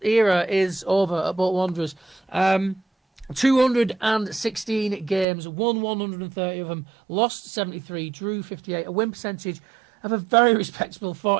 era is over at Bolton Wanderers. 216 games, won 130 of them, lost 73, drew 58, a win percentage of a very respectable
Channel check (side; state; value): left; drops out; at 5.2 s